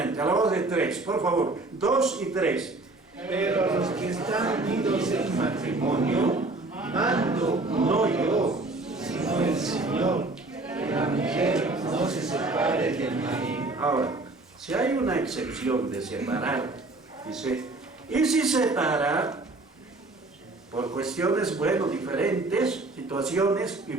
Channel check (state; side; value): quieter; left; 3.1 dB